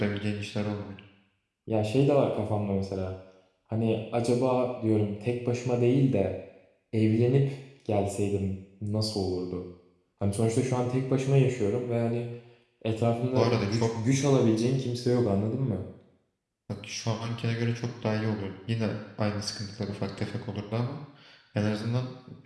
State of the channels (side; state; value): both; identical; correlation 1.00